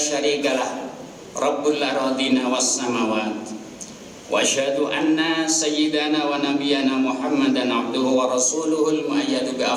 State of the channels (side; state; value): both; identical; correlation 1.00